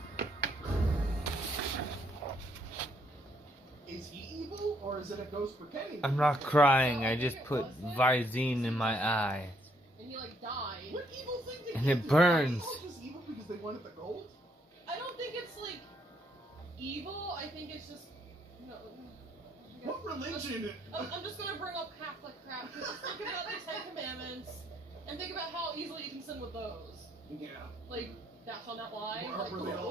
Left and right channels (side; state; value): both; normal; correlation 0.70